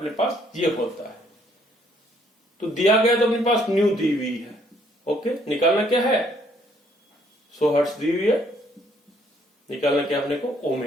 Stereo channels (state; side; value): normal; both; correlation 0.66